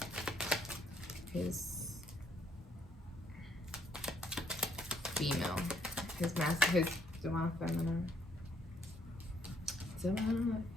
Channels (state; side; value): normal; both; correlation 0.70